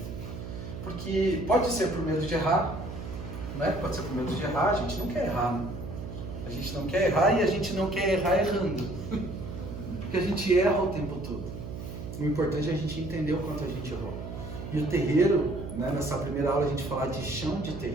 Porque pode ser por medo de errar, né? Pode ser por medo de errar, a gente não quer errar, né? A gente não quer errar e a gente não quer errar errando. Porque a gente erra o tempo todo. O importante é a gente entender o quanto a gente errou. E o terreiro, né, nessa primeira aula a gente falar de chão de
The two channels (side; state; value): right; noise; hum, 8 dB below the sound